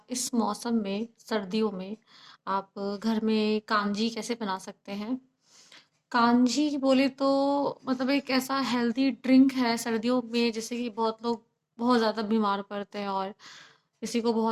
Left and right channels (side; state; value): both; identical; correlation 1.00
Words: इस मौसम में, सर्दियों में, आप घर में कांजी कैसे बना सकते हैं। कांजी बोले तो मतलब एक ऐसा हेल्दी ड्रिंक है सर्दियों में, जैसे कि बहुत लोग बहुत ज़्यादा बीमार पड़ते हैं और किसी को